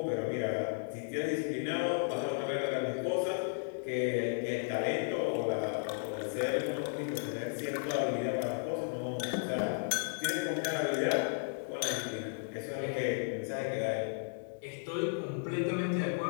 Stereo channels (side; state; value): right; silent; digital silence